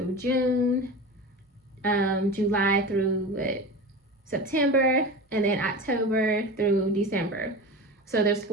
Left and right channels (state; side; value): normal; both; correlation 0.29